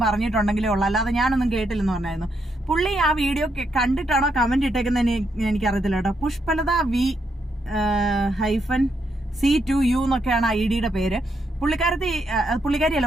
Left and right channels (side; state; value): both; normal; correlation 0.78